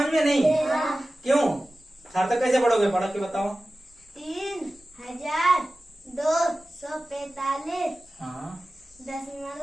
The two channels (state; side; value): normal; both; correlation 0.96